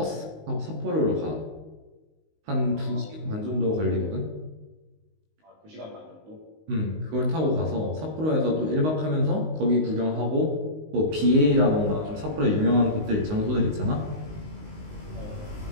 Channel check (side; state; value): left; late; 19 ms